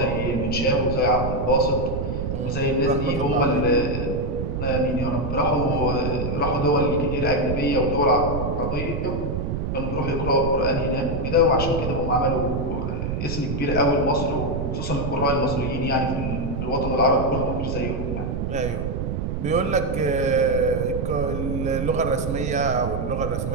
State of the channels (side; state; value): right; noise; rumble, 2 dB below the sound